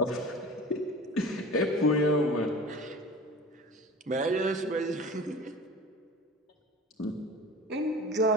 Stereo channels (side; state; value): both; normal; correlation 0.37